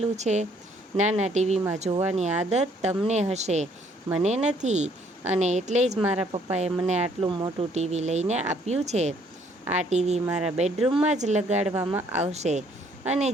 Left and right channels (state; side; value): normal; both; correlation 0.64